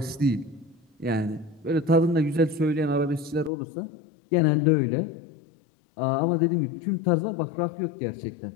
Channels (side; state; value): right; drops out; at 3.5 s